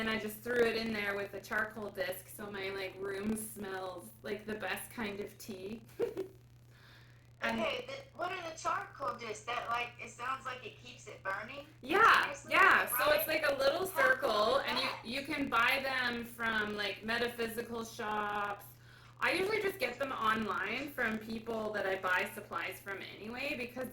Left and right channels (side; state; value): both; identical; correlation 1.00